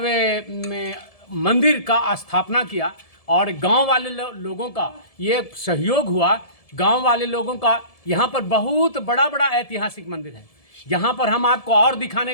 मंदिर का स्थापना किया और गांव वाले लोगों का ये सहयोग हुआ। गांव वाले लोगों का यहाँ पर बहुत बड़ा ऐतिहासिक मंदिर है। यहाँ पर हम आपको और दिखाने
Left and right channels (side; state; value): right; late; 1.7 ms